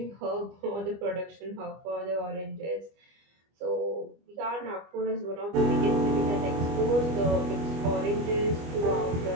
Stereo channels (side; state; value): left; late; 25 ms